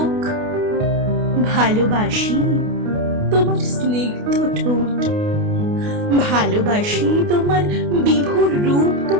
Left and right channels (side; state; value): left; late; 28 ms